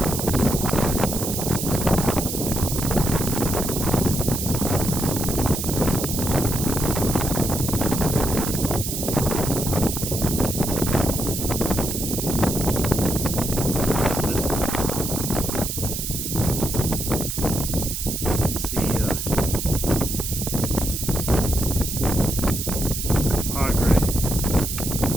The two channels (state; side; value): noise; right; hiss, 4 dB below the sound